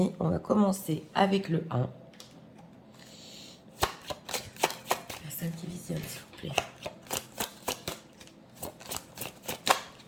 on va commencer avec le 1. Personne qui visionne, s'il vous plaît.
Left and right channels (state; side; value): identical; both; correlation 1.00